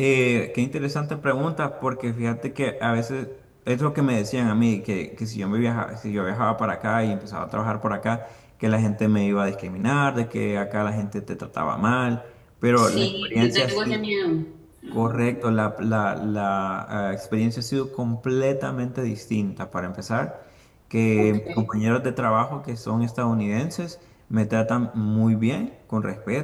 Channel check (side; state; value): both; identical; correlation 1.00